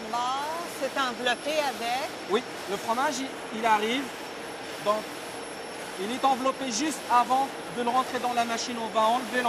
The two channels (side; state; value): both; identical; correlation 1.00